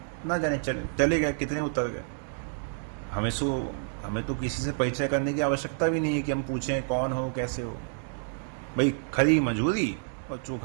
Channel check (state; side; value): silent; left; 59 dB below the other